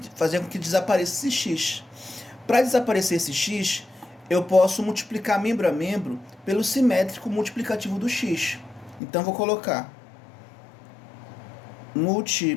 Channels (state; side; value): drops out; right; at 9.0 s